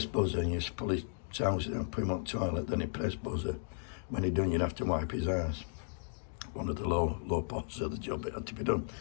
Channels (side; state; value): right; silent; digital silence